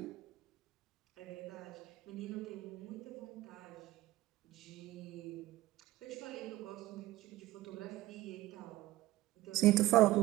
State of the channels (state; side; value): quieter; left; 16.7 dB